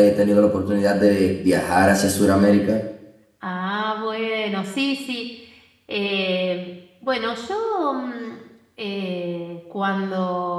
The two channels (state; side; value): identical; both; correlation 1.00